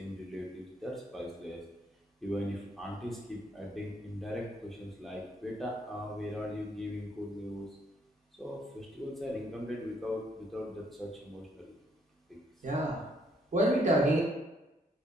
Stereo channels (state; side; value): normal; both; correlation 0.70